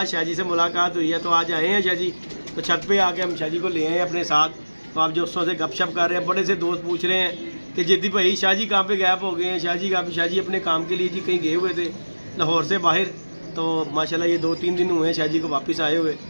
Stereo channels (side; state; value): both; inverted; correlation -1.00